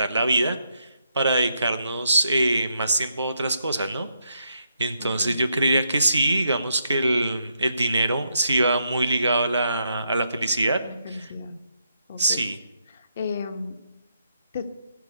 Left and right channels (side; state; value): both; inverted; correlation -0.78